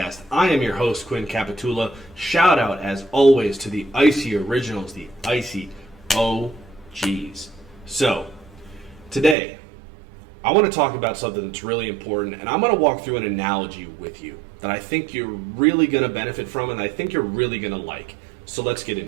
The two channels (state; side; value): drops out; left; at 9.3 s